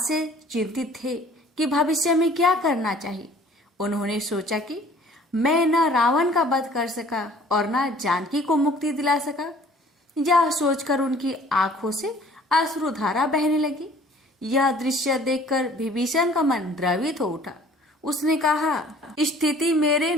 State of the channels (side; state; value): both; normal; correlation 0.53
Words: चिंतित थे कि भविष्य में क्या करना चाहिए। उन्होंने सोचा कि मैं न रावण का वध कर सका और न जानकी को मुक्ति दिला सका। यह सोचकर उनकी आंखों से अश्रुधारा बहने लगी। यह दृश्य देखकर विभीषण का मन द्रवित हो उठा। उसने कहा, स्थिति मेरे